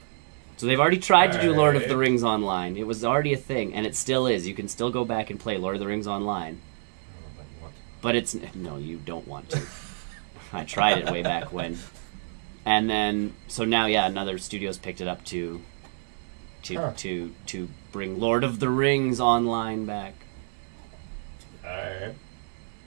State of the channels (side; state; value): left; silent; digital silence